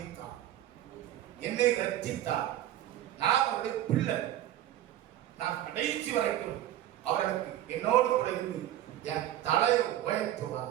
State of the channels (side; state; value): left; quieter; 12.9 dB